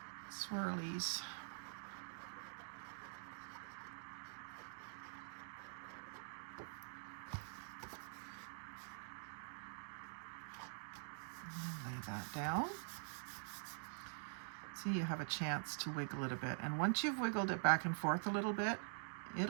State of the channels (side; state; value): left; silent; digital silence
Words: swirlies. And lay that down. See, you have a chance to wiggle it a bit. And once you've wiggled it back and forth a little bit,